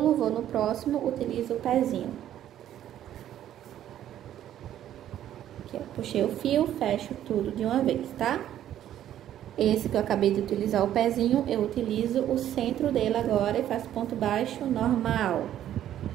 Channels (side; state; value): left; quieter; 11.5 dB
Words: vou no próximo, utilizo o pezinho. Aqui, ó, puxei o fio, fecho tudo de uma vez, tá? Esse que eu acabei de utilizar o pezinho, eu utilizo o centro dele agora e faço ponto baixo normal.